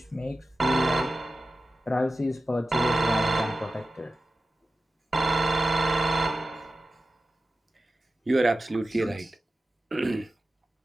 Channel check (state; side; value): normal; both; correlation 0.93